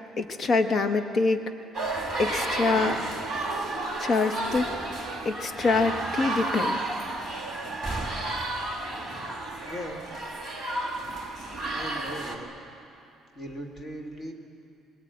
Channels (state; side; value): normal; both; correlation 0.72